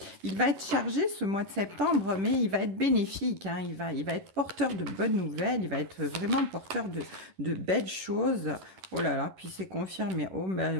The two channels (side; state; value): left; late; 10 ms